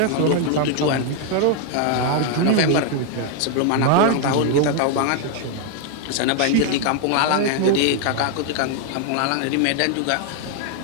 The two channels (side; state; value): both; different; correlation 0.01